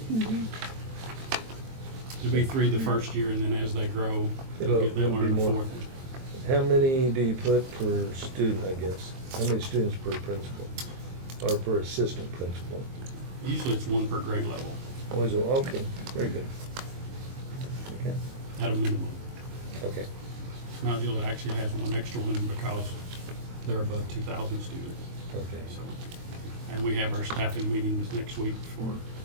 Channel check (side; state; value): left; late; 22 ms